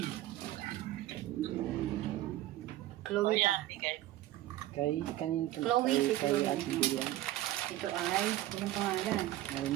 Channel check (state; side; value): quieter; left; 15.1 dB